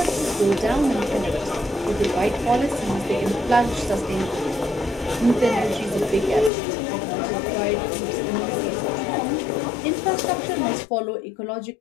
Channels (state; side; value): drops out; right; at 6.5 s